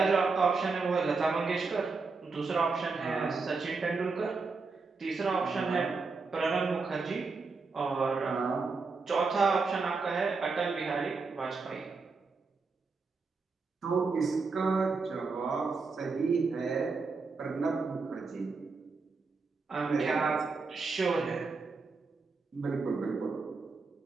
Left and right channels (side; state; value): left; quieter; 4.3 dB